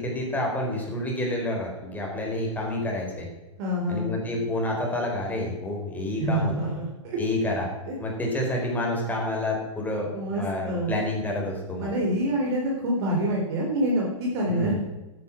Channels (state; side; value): normal; both; correlation -0.08